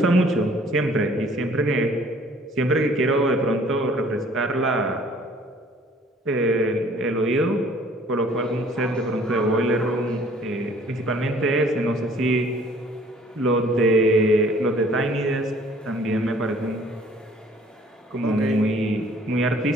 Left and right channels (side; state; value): both; normal; correlation 0.56